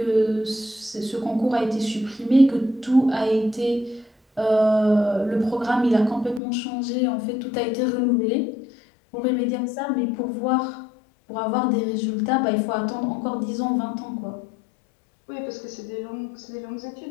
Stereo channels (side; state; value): right; drops out; at 6.4 s